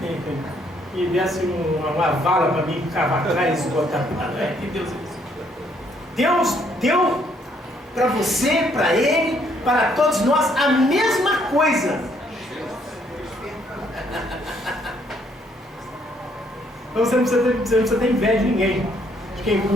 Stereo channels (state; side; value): normal; both; correlation 0.68